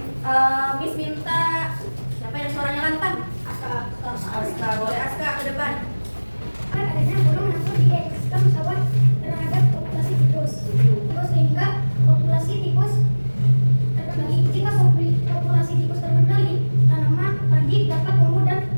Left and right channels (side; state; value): both; inverted; correlation -1.00